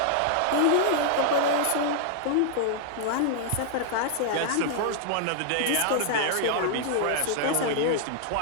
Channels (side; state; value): both; different; correlation -0.01